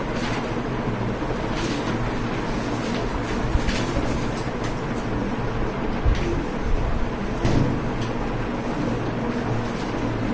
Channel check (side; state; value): both; identical; correlation 1.00